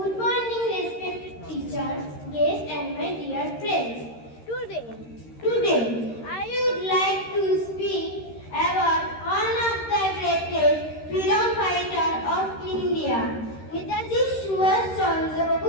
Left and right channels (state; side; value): late; right; 13 ms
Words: morning, respected teachers, guests, and my dear friends. Today, I would like to speak about one of the greatest freedom fighter of India, Netaji Subhash Chandra